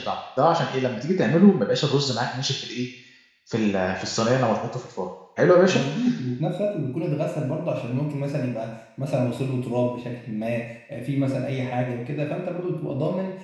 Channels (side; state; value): both; identical; correlation 1.00